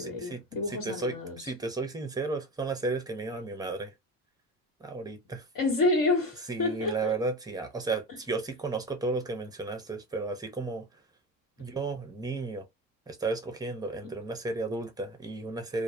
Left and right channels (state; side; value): normal; both; correlation 0.28